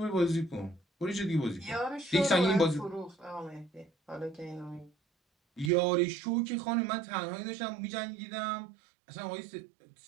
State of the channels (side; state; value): left; drops out; at 5.7 s